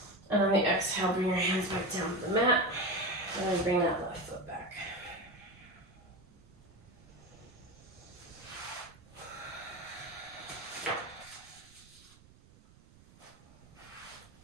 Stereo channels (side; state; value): right; noise; rumble, 24 dB below the sound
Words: and on the exhale, bring your hands back down to the mat, and then bring that left foot back.